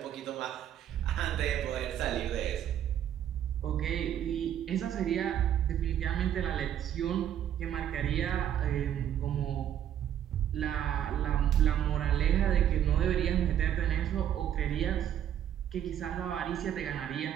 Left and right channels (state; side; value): quieter; left; 10.3 dB